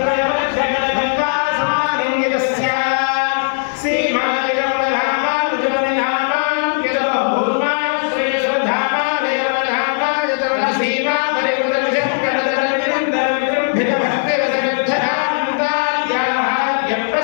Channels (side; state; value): right; silent; 61 dB below the other